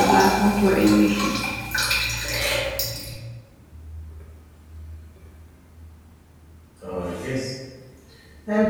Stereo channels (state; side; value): identical; both; correlation 1.00